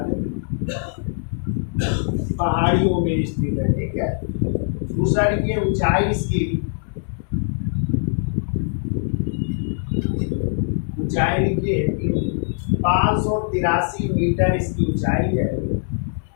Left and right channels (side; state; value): right; silent; 64 dB below the other